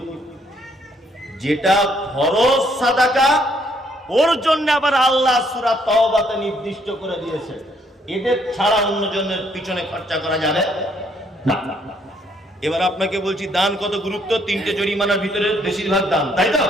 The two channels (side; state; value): both; normal; correlation 0.68